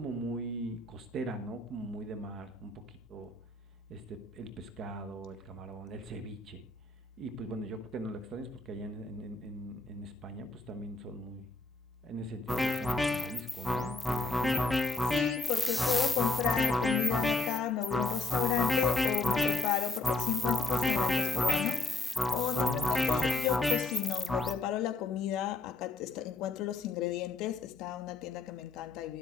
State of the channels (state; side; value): quieter; right; 3.5 dB